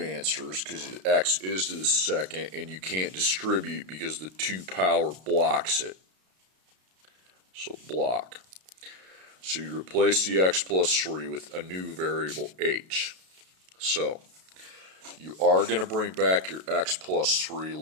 because x is to the second, and you can't distribute because the 2 power blocks it. So block. So you replace the x plus 3 with a new variable h. So you are going to bring back your x plus 3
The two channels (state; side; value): late; left; 32 ms